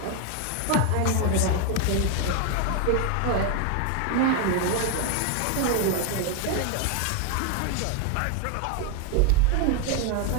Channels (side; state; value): both; different; correlation 0.01